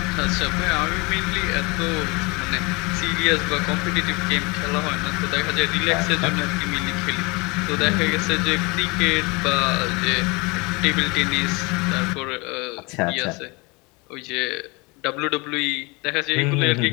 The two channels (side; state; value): right; quieter; 27.1 dB